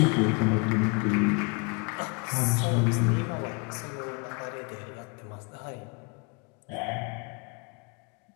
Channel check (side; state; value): right; quieter; 31.6 dB